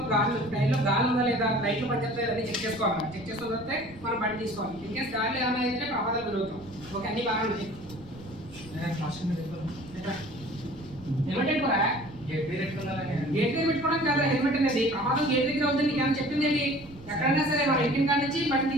ట్రైన్లో గాలి ఉందా లేదా, లైట్లు పనిచేస్తాయి అని చెక్ చేసుకోవాలి. చెక్ చేసుకున్న తర్వాత మనం బండి తీసుకోవాలి. ఇన్కేస్ గాలి ఏమైనా అయితే ప్రమాదాలు పెరుగుతాం. ఓకే, అన్ని బాగా ఉన్నాయి. హెల్మెట్ పెట్టుకోరా? గేట్ దగ్గర పెట్టుకోవడం కదా హెల్మెట్ అనేది. ప్రమాదం గేట్ దగ్గర అవుతుంది. నీకు ఏమైనా చెప్పింది ఏంటి? ఎక్కడైనా సరే మన ఇంటిని కాడి నుంచి బండి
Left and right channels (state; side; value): noise; right; rumble, 20 dB below the sound